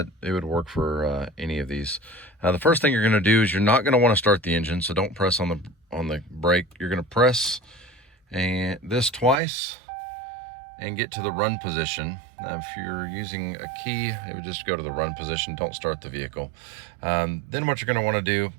it would work for any of these. The first thing you're going to do is you're not going to want to start the engine, so don't press on the brake. You're going to press this twice and get to the run position. Now, if you're using a key, it would just go to the run position. Don't start the vehicle. Then what you're going to want to do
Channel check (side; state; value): left; drops out; at 9.4 s